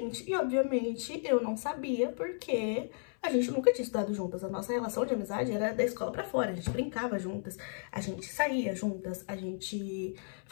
E, obviamente, eu não sabia porque a gente nunca tinha estudado juntas. A nossa relação de amizade era da escola pra fora. A gente brincava juntas, a gente saía juntas, a gente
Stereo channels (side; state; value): right; silent; 55 dB below the other